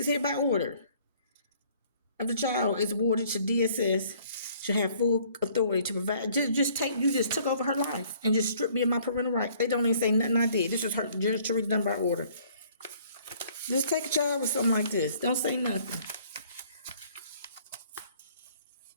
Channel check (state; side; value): inverted; both; correlation -0.59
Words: hereby ordered. If the child is awarded to DSS, should have full authority to provide. You just took over her life and just stripped me of my parental rights. They don't even say nothing I did. This was her just to read done by order. Just take a child with something like this. Don't say nothing.